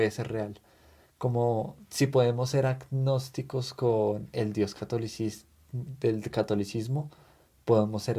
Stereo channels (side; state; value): both; identical; correlation 1.00